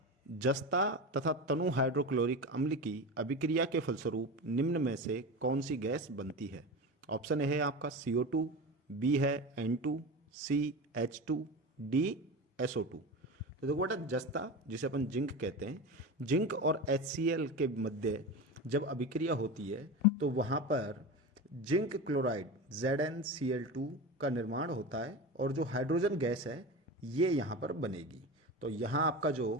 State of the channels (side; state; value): both; normal; correlation 0.26